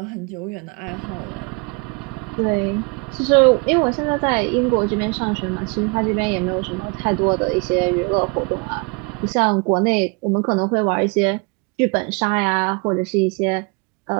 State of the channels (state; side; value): quieter; left; 31.3 dB